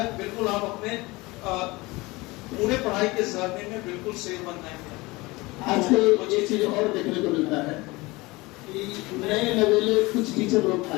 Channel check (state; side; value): quieter; right; 22.5 dB